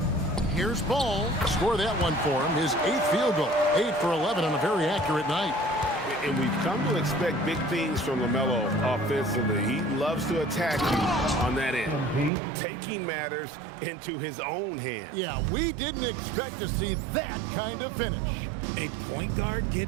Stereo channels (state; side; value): drops out; left; at 12.3 s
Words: Here's Ball. Score that one for him. His 8th field goal. 8 for 11 on a very accurate night. And we've come to expect big things from LaMelo offensively. He loves to attack you on that end, taking matters into his own hands. Yeah, we didn't expect to see that kind of finish. A point guard